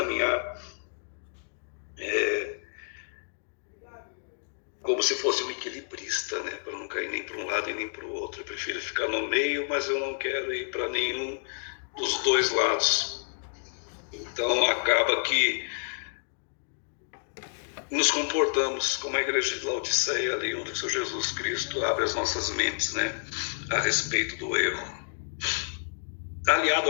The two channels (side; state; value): right; silent; digital silence